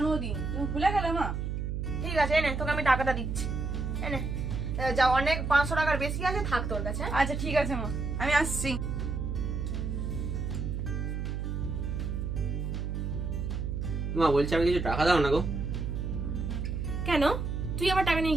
তুমি ভুলে গেলে মা? ঠিক আছে এনে, তোকে আমি টাকাটা দিচ্ছি। এনে যা, অনেক 500 টাকার বেশি আছে, থাক তোর কাছে। আচ্ছা ঠিক আছে মা, আমি আসছি। মা বলছি আমি কিছু টাকা দাও না গো। কেন, তুই আবার টাকা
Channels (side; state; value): right; noise; hum, 3 dB below the sound